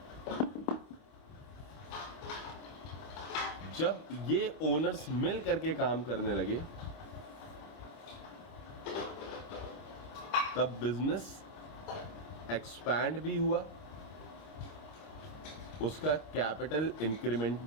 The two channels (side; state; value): right; late; 26 ms